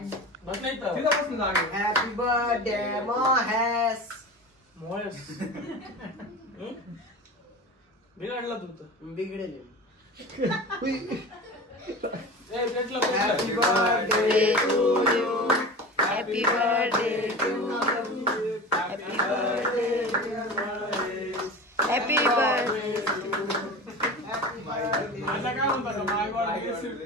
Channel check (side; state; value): both; normal; correlation 0.32